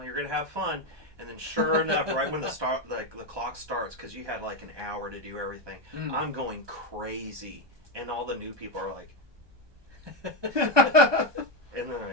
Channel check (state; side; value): late; left; 1.2 ms